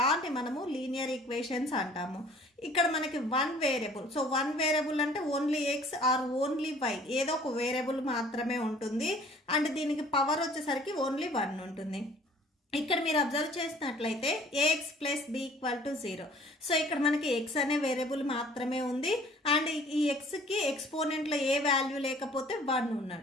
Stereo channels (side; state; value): both; normal; correlation 0.53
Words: మనము లీనియర్ ఈక్వేషన్స్ అంటాము. ఇక్కడ మనకి 1 వేరియబుల్, సో 1 వేరియబుల్ అంటే only X or only Y, ఏదో ఒక వేరియబుల్ మాత్రమే ఉంటుంది. అండ్ దీనికి పవర్ వచ్చేసరికి ఓన్లీ 1 ఉంటుంది. ఇక్కడ మీరు అబ్జర్వ్ చేసినట్లయితే A X plus B equal to 0. So ఇక్కడ మనకి ఎక్స్ అనే వేరియబుల్ మాత్రమే ఉంది. అండ్ ఈ ఎక్స్కి ఎక్స్పోనెంట్లో ఏ వాల్యూ లేకపోతే 1